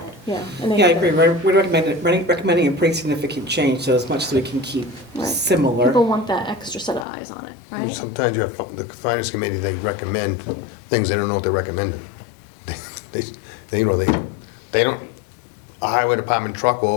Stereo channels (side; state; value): right; drops out; at 7.1 s